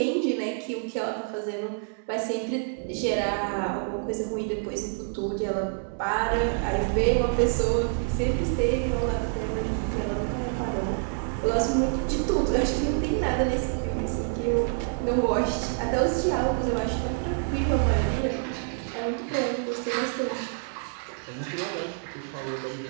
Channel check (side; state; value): left; silent; 60 dB below the other